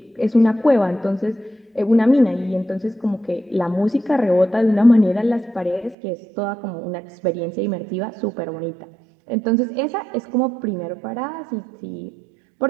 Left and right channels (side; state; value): left; drops out; at 6.0 s